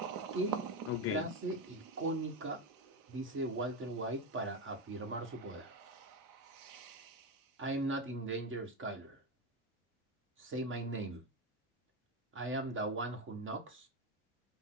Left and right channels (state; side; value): normal; both; correlation 0.13